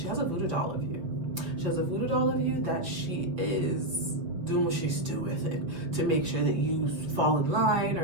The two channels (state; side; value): late; left; 5.8 ms